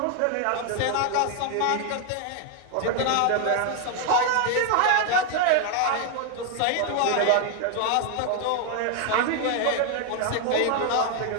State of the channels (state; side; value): different; both; correlation 0.00